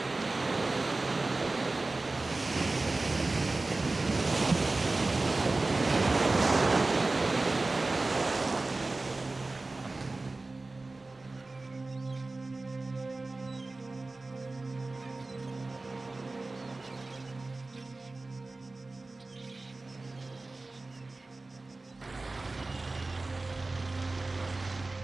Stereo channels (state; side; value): quieter; left; 3.2 dB